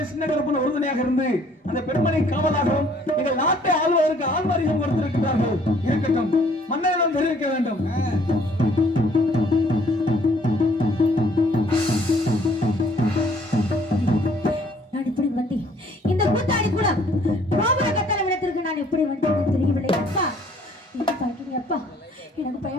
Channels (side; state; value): both; normal; correlation 0.60